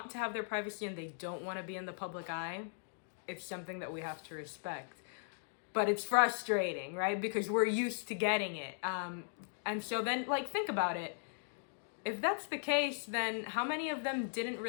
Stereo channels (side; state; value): right; silent; digital silence